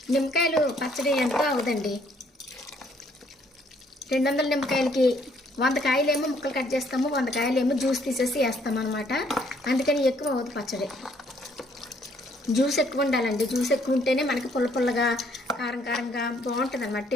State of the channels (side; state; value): both; normal; correlation 0.65